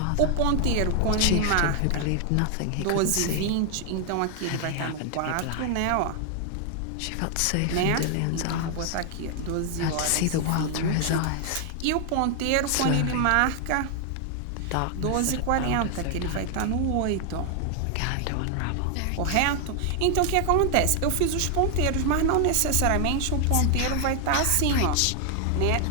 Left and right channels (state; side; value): different; both; correlation 0.00